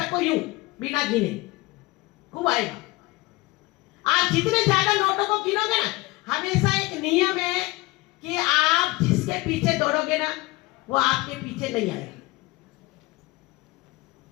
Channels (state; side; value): quieter; right; 21.7 dB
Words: यूं बिना गिने, खूब आएगा। आप जितने ज्यादा नोटों को गिनोगे ना, हमेशा एक नियम है कि आप जिसके पीछे दौड़ोगे ना वो आपके पीछे नहीं आएगा।